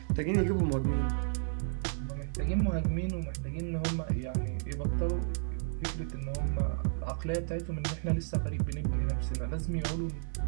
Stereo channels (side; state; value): left; silent; digital silence